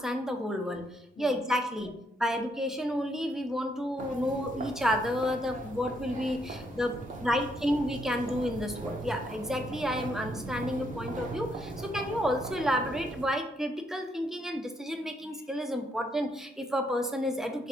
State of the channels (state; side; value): normal; both; correlation 0.74